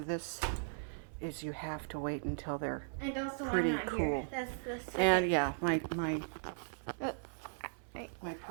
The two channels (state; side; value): silent; left; 53 dB below the other